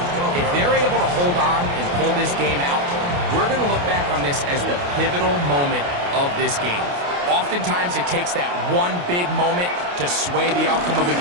If they're able to hold on and pull this game out, we're going to look back on this as the pivotal moment of this game. Oftentimes, it takes that one big moment to sway the outcome of a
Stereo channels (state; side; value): late; left; 28 ms